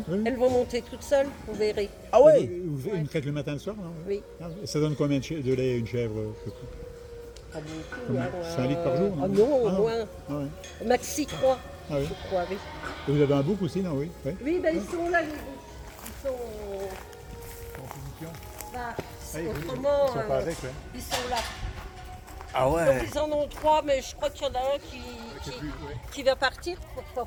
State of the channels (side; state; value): both; identical; correlation 1.00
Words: oui. Elles vont monter toutes seules, vous verrez. Ah ouais? Vous une traite le matin et le soir, non? Oui. Ah, et ça donne combien de lait une chèvre? Pas beaucoup. Combien? Hein, 5 litres par jour, non? Ah non, au Ah non. moins. Ah ouais. Maxi 3, Ah oui. je crois, oui. Et vous avez un bouc aussi, non? Oui. Oui. Oui, ben ils sont là, les boucs. Ils sont. En position. Bah, Ah, autrement, ils sont pas avec, ouais. ils sont là. Ah Donc ouais. ils en ont 3, mais je crois qu'il y en a un C'est plus, ouais. qui va partir pour pouvoir